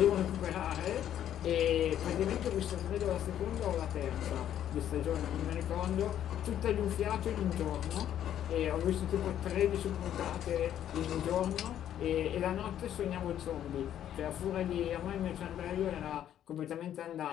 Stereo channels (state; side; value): quieter; right; 10.7 dB